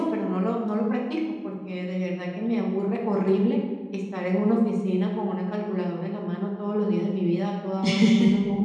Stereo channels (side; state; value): both; identical; correlation 1.00